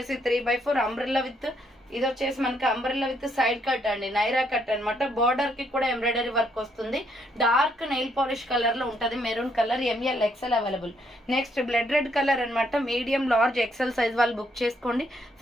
3/4 అంబ్రెల్లా విత్ ఇది వచ్చేసి మనకి అంబ్రెల్లా విత్ సైడ్ కట్ అండి. నైరా కట్ అనమాట. బార్డర్ కి కూడా ఎంబ్రాయిడరీ వర్క్ వస్తుంది. డార్క్ నెయిల్ పాలిష్ కలర్ లో ఉంటది. Maroon colour. ML XL available. Next blood red colour అనమాట. మీడియం లార్జ్ ఎక్సెల్ సైజ్ వాళ్ళు బుక్ చేసుకోండి.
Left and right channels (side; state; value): both; normal; correlation 0.72